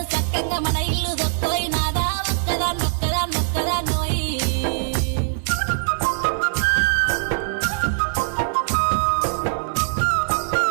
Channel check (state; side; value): silent; left; digital silence